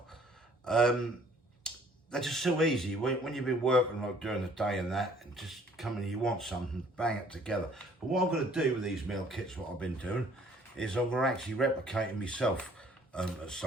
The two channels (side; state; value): both; normal; correlation 0.58